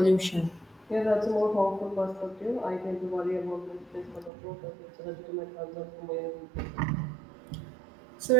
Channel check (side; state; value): left; drops out; at 4.3 s